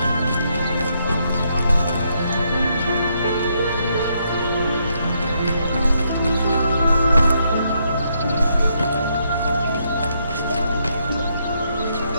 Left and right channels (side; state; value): both; inverted; correlation -0.76